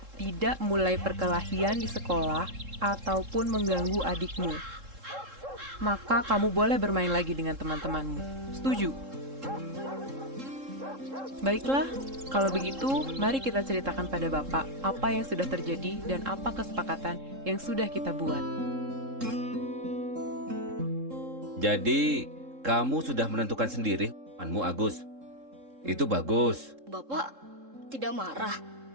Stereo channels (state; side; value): late; left; 3.7 ms